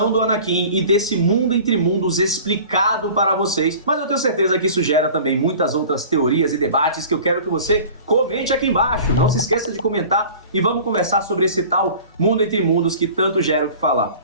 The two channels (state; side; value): inverted; both; correlation -0.43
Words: do Anakin e desse mundo entre mundos explicado para vocês, mas eu tenho certeza que isso gera também muitas outras teorias e debates que eu quero que você comente aqui embaixo. Não se esqueça de comentar e vamos conversar sobre esse tal mundo entre mundos que tanto gera o que falar.